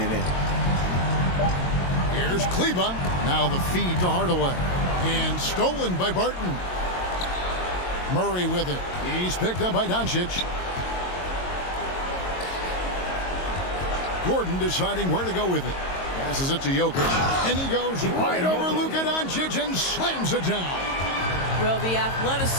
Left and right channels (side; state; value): right; late; 22 ms